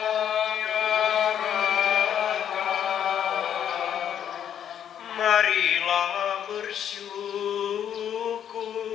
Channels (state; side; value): quieter; right; 9.4 dB